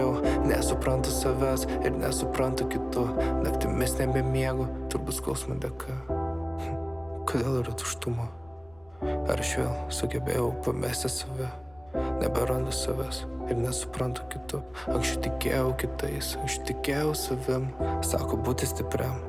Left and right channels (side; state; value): left; noise; rumble, 27 dB below the sound